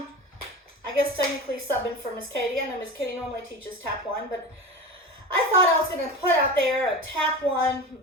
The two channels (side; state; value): both; normal; correlation 0.29